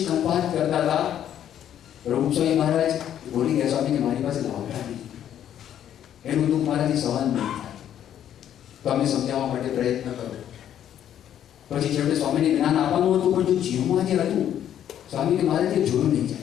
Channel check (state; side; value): quieter; right; 10.4 dB